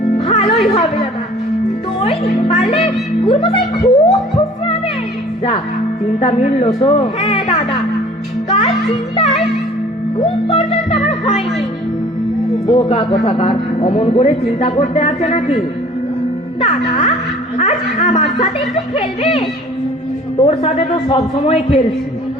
ভালোই হবে দাদা, দই পারলে গুরুমশাই খুব খুশি হবে। যা, চিন্তা মিললো তো? হ্যাঁ দাদা, কাল চিন্তায় ঘুম পর্যন্ত আমার হয়নি। বোকা কোথাকার, অমন করে চিন্তা করতে আছে নাকি? দাদা, আজ আমার সাথে একটু খেলবে? তোর সাথে তো সব সময় খেলছি,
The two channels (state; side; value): normal; both; correlation 0.49